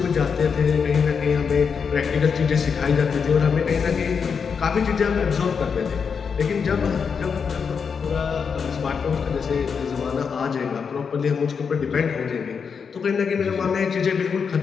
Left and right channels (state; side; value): quieter; right; 6.1 dB